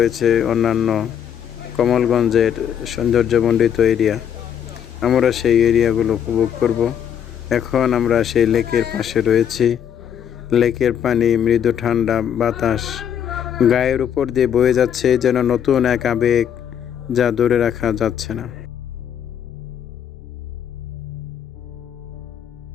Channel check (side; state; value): right; quieter; 9.0 dB